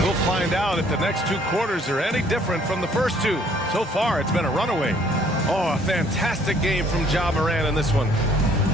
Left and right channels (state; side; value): normal; both; correlation 0.61